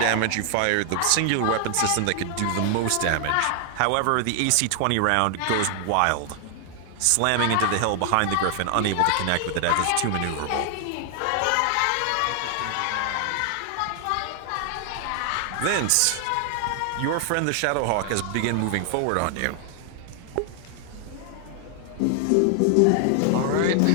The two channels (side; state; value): both; different; correlation 0.00